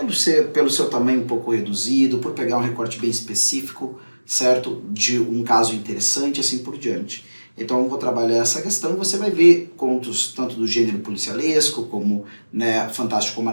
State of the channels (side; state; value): both; inverted; correlation -1.00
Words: pelo seu tamanho um pouco reduzido, por pegar um recorte bem específico, certo? De um caso interessante, assim por diante. Então eu vou trabalhar essa questão e você vai ver contos tanto do gênero policialesco, como, né, fantástico